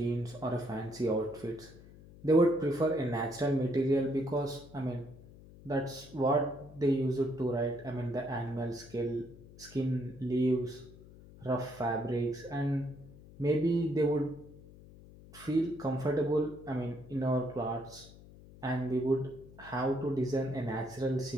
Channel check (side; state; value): left; noise; hum, 20 dB below the sound